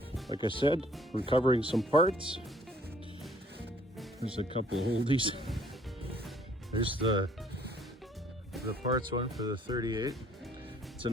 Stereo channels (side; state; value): both; normal; correlation 0.60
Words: Like I said, recovering some parts. There's a couple of oldies. There's the parts one for the 38. It's a